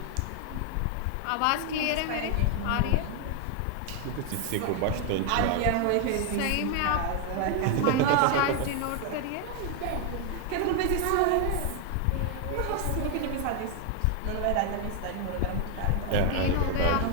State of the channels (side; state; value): both; different; correlation 0.01